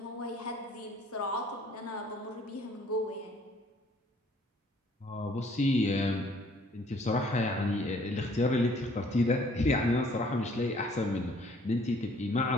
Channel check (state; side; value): normal; both; correlation 0.59